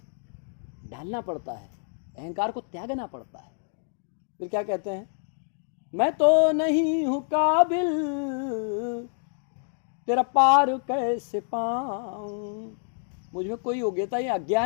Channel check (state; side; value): silent; right; digital silence